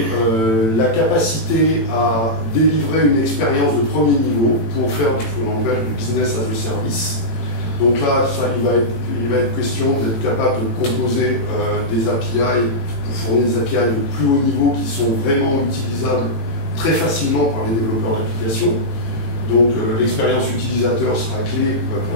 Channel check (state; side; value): late; right; 18 ms